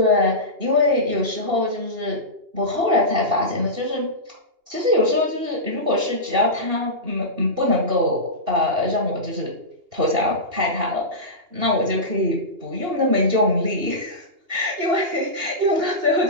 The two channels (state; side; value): late; left; 2.8 ms